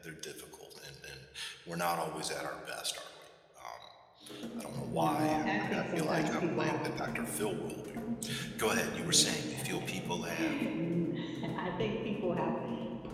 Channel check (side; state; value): both; identical; correlation 1.00